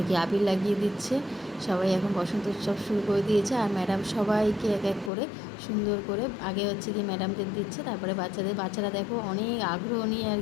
কি আবির লাগিয়ে দিচ্ছে। সবাই এখন বসন্ত উৎসব শুরু করে দিয়েছে। আর ম্যাডাম সবাইকে এক এক করে সুন্দর করে আগে হচ্ছে কি ম্যাডামদের দিচ্ছে, তারপরে বাচ্চারা দেখো অনেক আগ্রহ নিয়ে আর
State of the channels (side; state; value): right; drops out; at 5.1 s